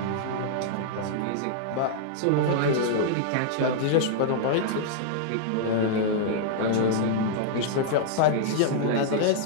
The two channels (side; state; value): both; different; correlation -0.01